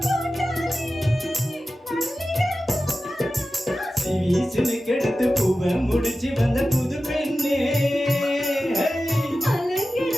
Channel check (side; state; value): both; normal; correlation 0.94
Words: வீசுன்னு கெடுத்து பூவை முடிச்சு வந்த புது பெண்ணே